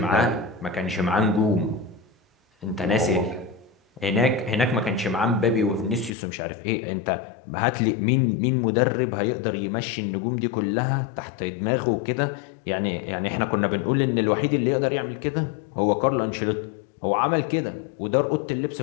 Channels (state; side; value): drops out; right; at 6.2 s